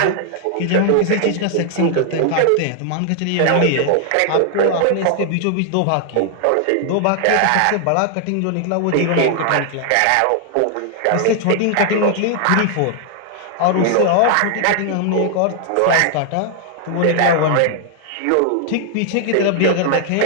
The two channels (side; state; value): both; different; correlation 0.00